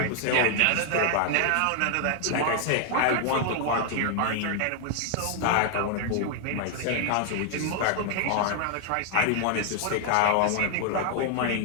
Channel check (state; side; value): different; both; correlation 0.00